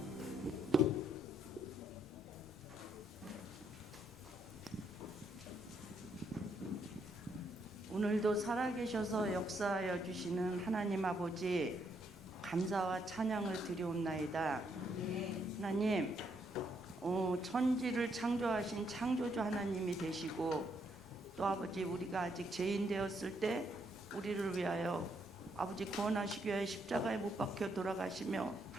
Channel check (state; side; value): normal; both; correlation 0.74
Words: 오늘도 살아계셔서 역사하여 주시는 하나님 아버지, 감사와 찬양을 드리옵나이다. 하나님, 천지를 창조하신 창조주 하나님이 되시고, 또 아버지, 우리가 아직 죄인 되었을 때 우리를 위하여 아버지 구원하시기 위하여 십자가에 못 박혀 돌아가시며